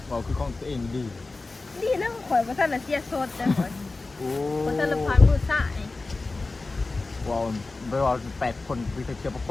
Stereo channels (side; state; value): right; quieter; 3.5 dB